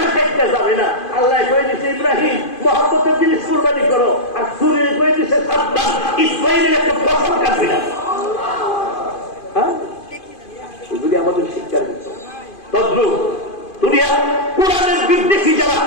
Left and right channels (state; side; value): late; right; 2.5 ms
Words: কাটতে যাবে না। আল্লাহ কয়ে দিছে ইব্রাহিম মহব্বতের জিনিস কুরবানি করো, আর ছুরি কয়ে দিছে সাবধান, ইসমাইলের একটা ফসল কাটবে না। হ্যাঁ, এগুলি আমাদের শিক্ষার বিষয়। তদ্রুপ দুনিয়া কোরআনের বিদ্বেষী যারা,